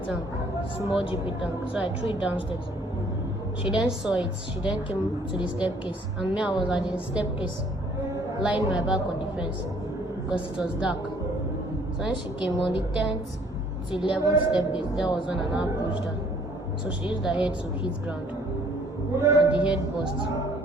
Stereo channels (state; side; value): normal; both; correlation 0.60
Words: tank, small GP tank, so I threw it downstairs. She then saw it. She then came to the staircase, and me, I was at the staircase, lying my back on the fence because it was dark. So when she came on the 10th to 11th staircase, there was when I now pushed her. So she used her head to hit ground, and the head burst.